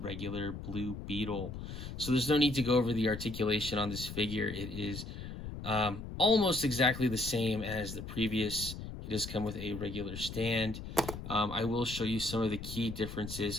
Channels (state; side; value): noise; left; rumble, 9 dB below the sound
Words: Blue Beetle. So there's no need to go over the articulation on this figure. It is almost exactly the same as the previous. He does come with a regular stand. I will show you some of the key